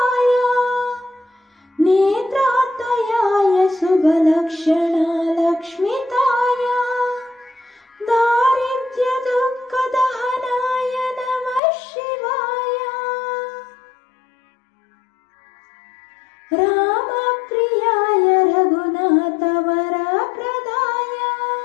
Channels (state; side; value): drops out; right; at 11.6 s